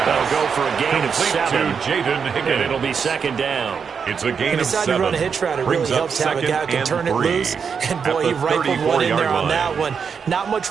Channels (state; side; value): quieter; left; 6.3 dB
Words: They'll go for a gain of 7. To Jaden Higgins. And it'll be second down. It's a gain of 7. To run a hitch route, it really helps to have a guy who can turn it loose. And boy, he rifled one in there on that one. Not much